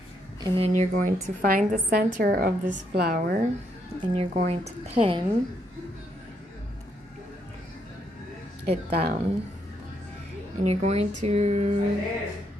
And then you're going to find the center of this flower and you're going to pin it down. And you're going to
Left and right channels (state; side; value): normal; both; correlation 0.75